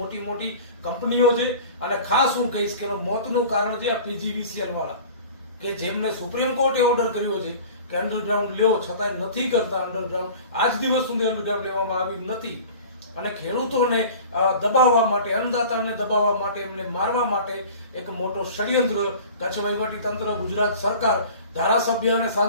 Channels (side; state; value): both; inverted; correlation -0.41